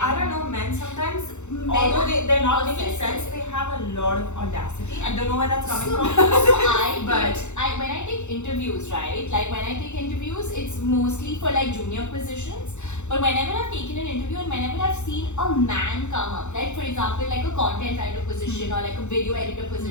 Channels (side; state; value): right; late; 0.83 ms